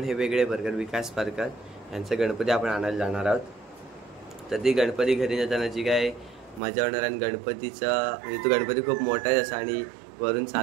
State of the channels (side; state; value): left; drops out; at 6.6 s